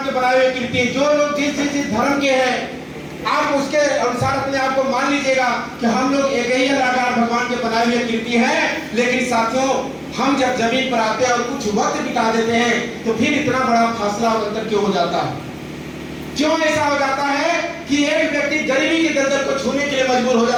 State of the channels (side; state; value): both; identical; correlation 1.00